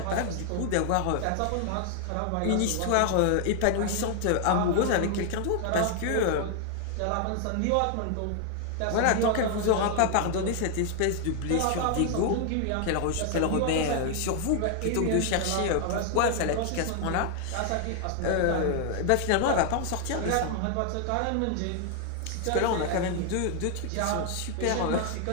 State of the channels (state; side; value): different; both; correlation 0.00